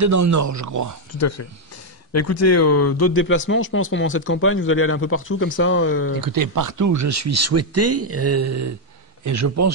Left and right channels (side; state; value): both; normal; correlation 0.01